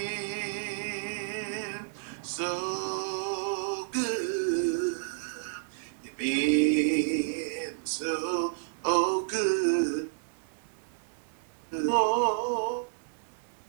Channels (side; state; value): left; silent; digital silence